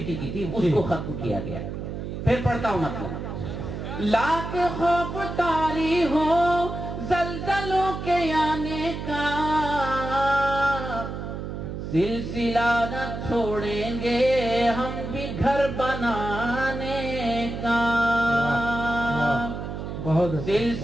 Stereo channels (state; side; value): noise; right; hum, 6 dB below the sound